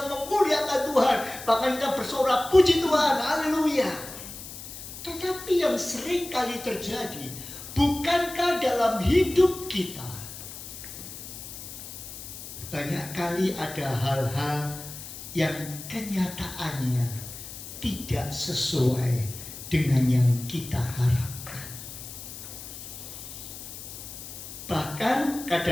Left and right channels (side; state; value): left; noise; hiss, 12 dB below the sound